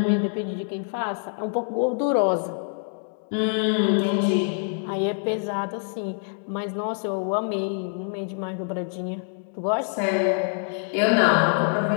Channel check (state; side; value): silent; right; 62 dB below the other